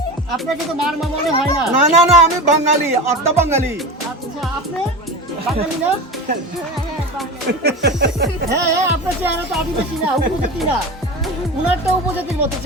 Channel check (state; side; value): normal; both; correlation 0.28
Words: আপনাকে তো মার মনে হয় না। না না না, আমি বাঙালি, আত্মা বাঙালি। আচ্ছা, আপনি বাঙালি না? হ্যাঁ, আপনার চেহারা তো আদিবাসী না, উপজাতি না। উনারটা উপজাতির মতো